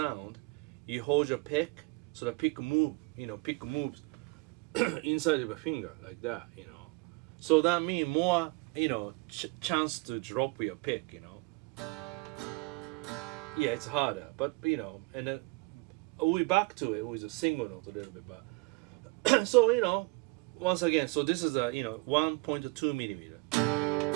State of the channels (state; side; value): quieter; left; 26.8 dB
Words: you hold your pick, so the pick moves inside of a finger like that, you know. So that means more, you know, chance to drop your pick, you know. Yeah, it's harder, but you know, and then we back to it with a single note a little bit, but so you know, once again, so this is a, you know, 1.2mm.